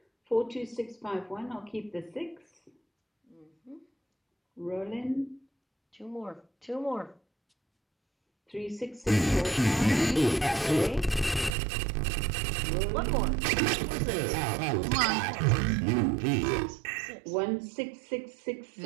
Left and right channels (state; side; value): drops out; left; at 11.5 s